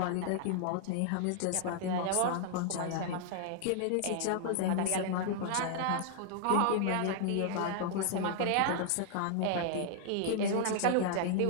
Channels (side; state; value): both; different; correlation -0.01